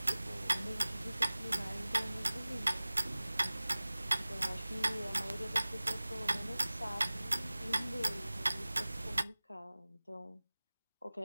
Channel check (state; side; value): inverted; both; correlation -0.98